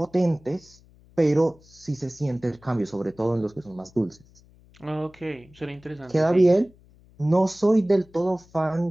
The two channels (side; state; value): left; noise; hum, 27 dB below the sound